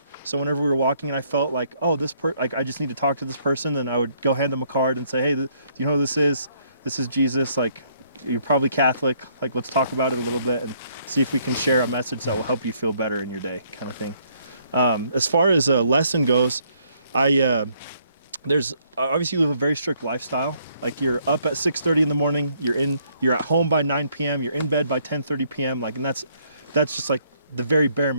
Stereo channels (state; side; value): inverted; both; correlation -0.68